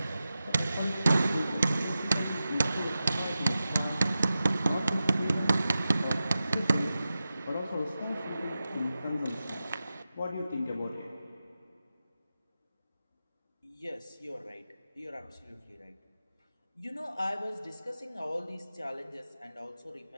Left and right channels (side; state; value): both; inverted; correlation -0.93